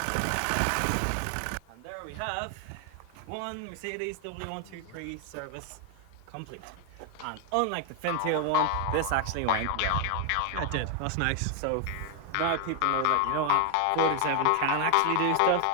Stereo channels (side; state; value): both; different; correlation 0.00